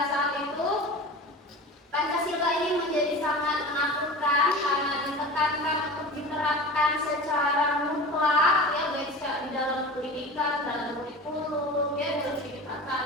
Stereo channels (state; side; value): normal; both; correlation 0.34